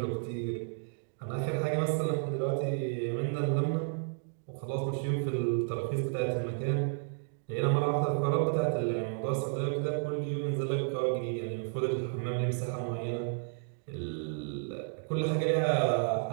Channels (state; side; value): silent; left; digital silence